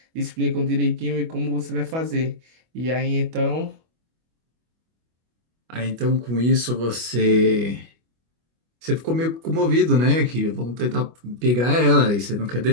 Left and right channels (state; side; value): late; left; 25 ms